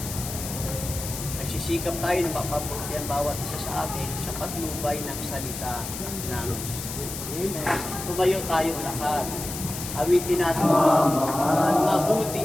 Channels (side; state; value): left; noise; hiss, 8 dB below the sound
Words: Nagsisikap tayo na mapabuti ang bawat isa sa atin sa patnubay ng salita ng tumayo tayo lahat. Awitin natin,